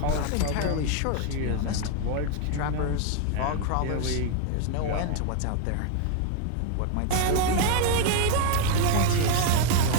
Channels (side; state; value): both; different; correlation 0.00